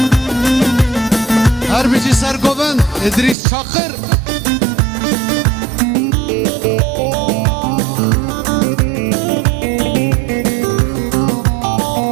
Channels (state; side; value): drops out; left; at 3.4 s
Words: هر بيجي سرقوبن ادريس شاقر